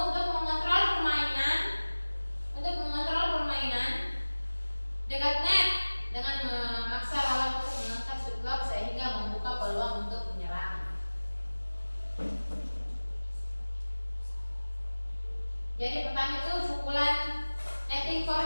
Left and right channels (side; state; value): both; inverted; correlation -1.00